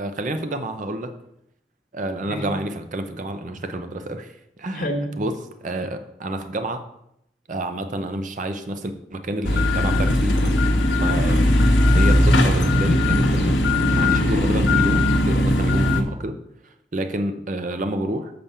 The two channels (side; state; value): both; normal; correlation 0.78